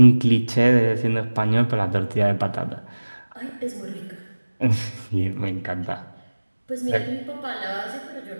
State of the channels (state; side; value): inverted; both; correlation -1.00